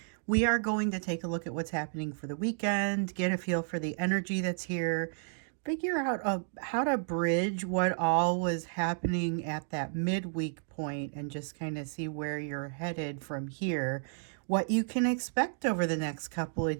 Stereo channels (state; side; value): silent; left; digital silence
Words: we are going to take a look at what's happening for the weekend, get a feel for the energy that's here, figure out how to bridge what all was happening at that midweek point, and just kind of see where you're headed from here, what you can expect over the next couple of